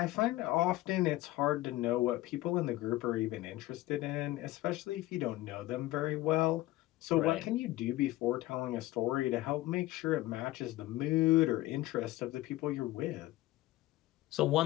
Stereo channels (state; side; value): quieter; right; 17.2 dB